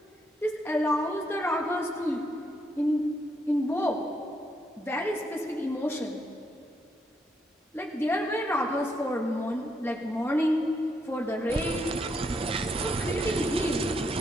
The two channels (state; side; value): normal; both; correlation 0.77